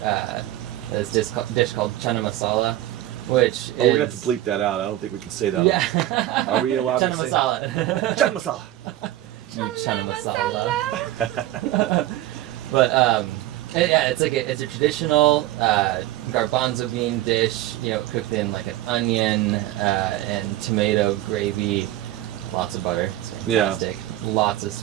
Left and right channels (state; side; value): quieter; left; 14.7 dB